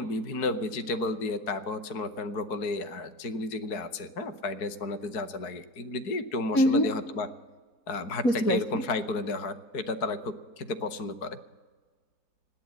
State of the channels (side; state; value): right; late; 4.6 ms